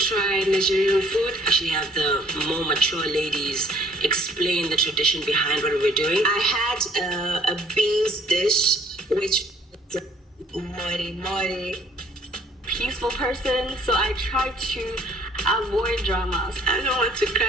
Nigerian food. Actually have the more mature ladies explain the tradition behind what we're doing. I had a beans dish, which was a mighty peaceful person, so I tried to avoid dramas. I don't want to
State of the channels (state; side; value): normal; both; correlation 0.60